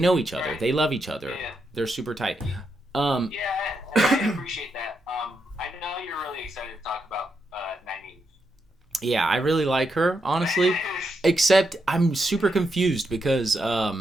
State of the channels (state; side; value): normal; both; correlation 0.82